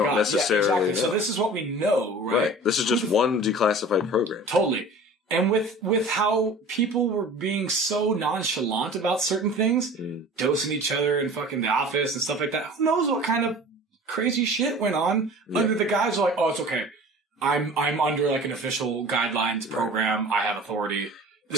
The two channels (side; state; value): both; normal; correlation 0.41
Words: God! necessarily Yeah, exactly. know. So this is what we know, right? This is just one declassified program. Totally. And with how people were being so nonchalant about certain things, dosing each other in fucking the office and stuff like that, who knows what kind of crazy shit went on under the guys who are like, oh, it's okay. I'm under like an official guidelines program. I have authority.